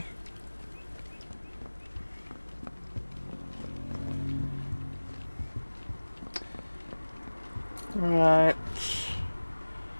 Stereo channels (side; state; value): both; inverted; correlation -1.00